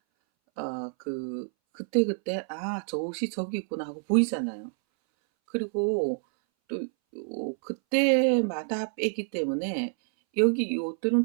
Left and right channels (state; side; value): silent; left; 59 dB below the other